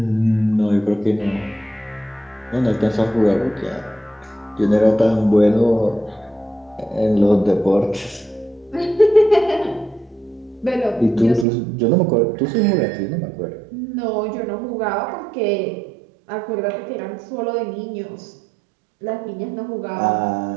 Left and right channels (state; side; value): drops out; left; at 11.5 s